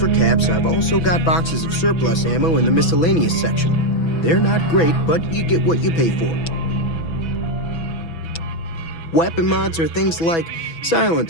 caps, I've also got boxes of surplus ammo in the miscellaneous section. They're not great, but you get what you pay for. Weapon mods are things like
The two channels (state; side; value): late; right; 6.1 ms